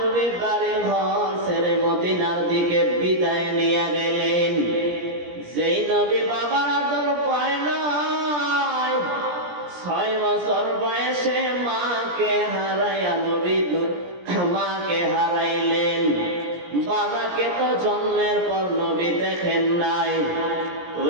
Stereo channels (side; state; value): left; late; 17 ms